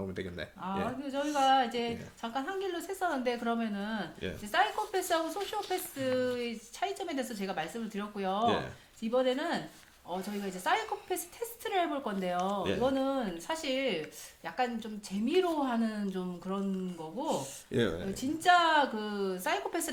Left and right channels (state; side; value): identical; both; correlation 1.00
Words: 되겠네. 예. 저희가 이제 잠깐 한 길로 샜었는데 그러면은 예. 이제 사이코패스하고 소시오패스의 차이점에 대해서 제가 말씀을 드렸고요. 예. 이번에는 저희가 이제 사이코패스 테스트를 해볼 건데요. 예. 이거는 사실 약간 좀 재미로 하는 좀 그런 거고, 예. 진짜 그